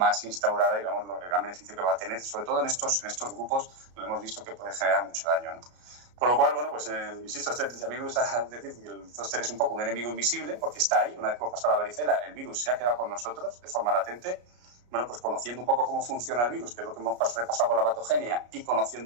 instaurada y veamos el gran beneficio que va a tener, sobre todo en estos grupos donde hemos visto que puede generar mucho daño, ¿no? Con lo cual, bueno, pues insisto, a mí me gusta decir que el zóster es un poco un enemigo invisible porque está ahí. Una vez que hemos pasado la varicela, el virus se ha quedado con nosotros de forma latente. Bueno, pues conociendo un poco cómo funciona el virus, que es lo que hemos repasado con la patogenia, y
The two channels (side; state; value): left; late; 33 ms